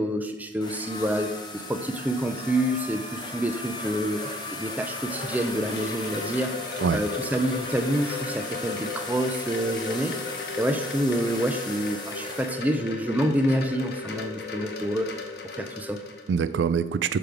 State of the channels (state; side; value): normal; both; correlation 0.64